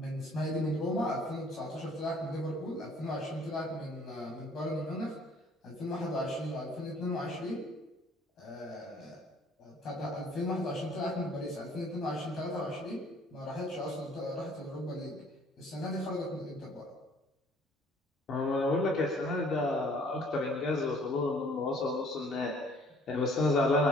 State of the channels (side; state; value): both; normal; correlation 0.57